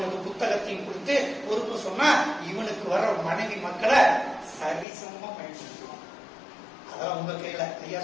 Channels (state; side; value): drops out; right; at 4.9 s